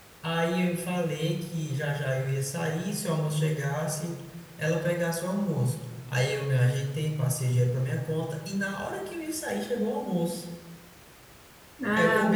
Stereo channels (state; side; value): identical; both; correlation 1.00